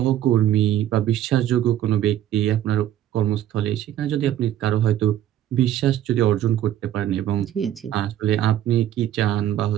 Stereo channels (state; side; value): quieter; left; 11.9 dB